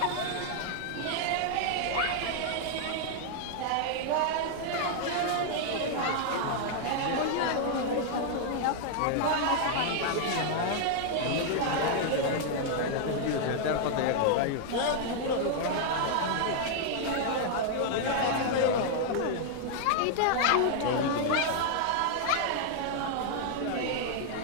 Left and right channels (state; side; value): different; both; correlation 0.00